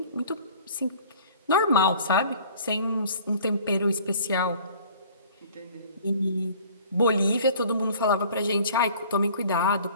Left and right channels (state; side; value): inverted; both; correlation -0.50